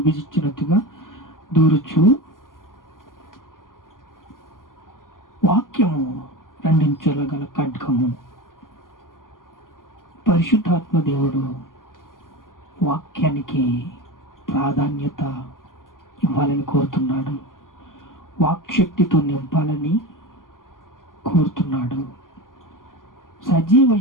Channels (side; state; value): right; late; 0.90 ms